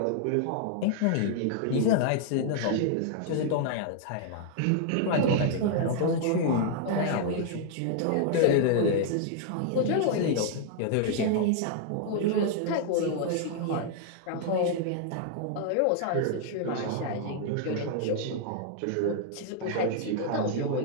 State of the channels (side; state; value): both; different; correlation -0.01